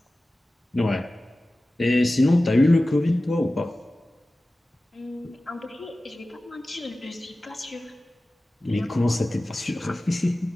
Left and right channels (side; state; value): both; normal; correlation 0.96